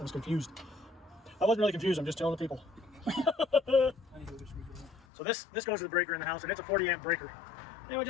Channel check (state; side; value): drops out; right; at 5.1 s